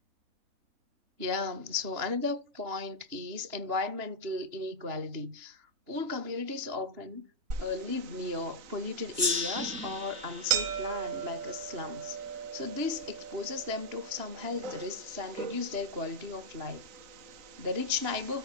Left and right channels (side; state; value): left; late; 3.2 ms